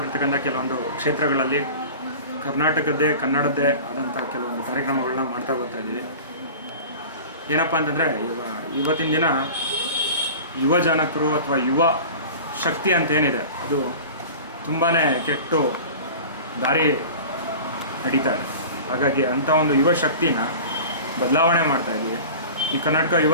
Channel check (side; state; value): both; inverted; correlation -0.37